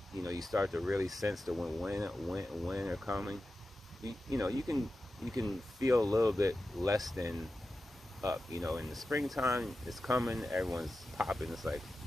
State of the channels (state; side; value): normal; both; correlation 0.93